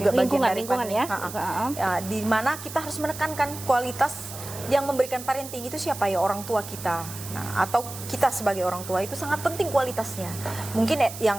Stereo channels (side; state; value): right; noise; hiss, 12 dB below the sound